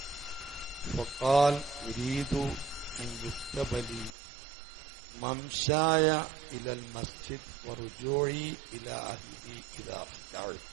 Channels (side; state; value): left; drops out; at 4.2 s